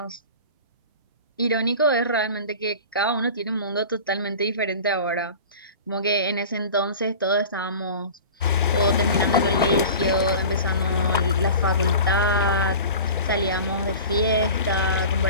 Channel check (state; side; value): inverted; both; correlation -0.37